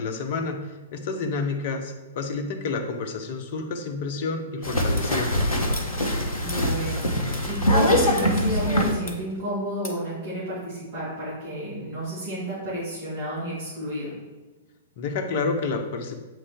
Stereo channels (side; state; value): both; inverted; correlation -0.38